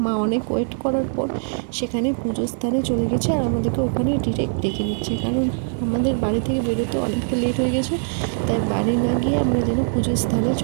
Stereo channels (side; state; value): left; silent; 59 dB below the other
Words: মা অনেক ওয়েট করার পর সেখানে পুজোর স্থানে চলে গেছে আর আমাদেরকে ওখানে ডিরেক্ট ডেকে নিচ্ছে, কারণ আমাদের বাড়ি থেকে বেরোতে অনেকটা লেট হয়ে গেছে। তাই বাড়ি না গিয়ে আমরা যেন পুজোর স্থানে